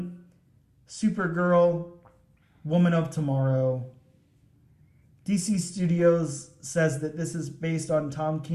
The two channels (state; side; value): identical; both; correlation 1.00